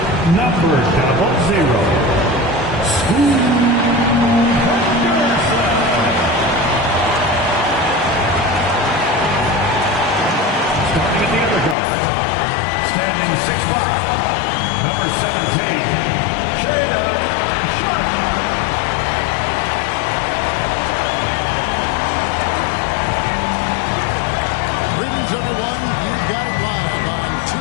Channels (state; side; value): drops out; right; at 11.8 s